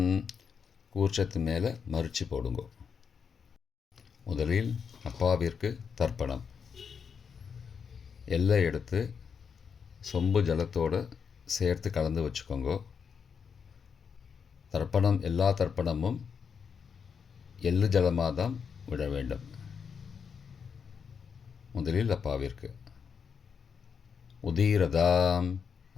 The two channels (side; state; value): right; quieter; 6.5 dB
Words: கூர்ச்சத்து மேலே மறித்து போடுங்கோ. முதலில் அப்பாவிற்கு தர்ப்பணம். எல்லை எடுத்து சொம்பு ஜலத்தோடு சேர்த்து கலந்து வச்சுக்கோங்க. தர்ப்பணம் எல்லா தர்ப்பணமும் எள்ளு ஜலமாக தான் விட வேண்டும். முதலில் அப்பாவிற்கு உதீரதாம்